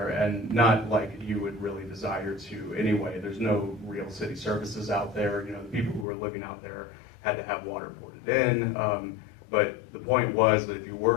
and not like you would really desire to anyway. There's no real city services out there. You know, the people who were living out there had to have water poured in. But the point was that if you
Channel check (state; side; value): drops out; right; at 6.1 s